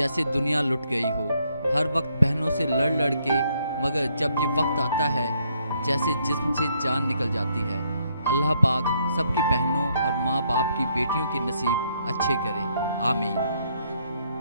दुनिया लुट गई हो। हर वक्त बहनों से लड़ लड़ के, मगर जब ये वक्त आता है जैसे जिस्म से जान निकल जाती है। अल्लाह पाक सबकी बहनों और माँ बाप की बेटियों के नसीब अच्छे करे, आमीन।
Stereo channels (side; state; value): both; inverted; correlation -0.72